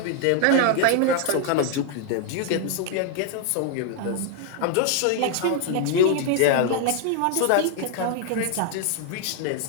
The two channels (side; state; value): both; different; correlation 0.00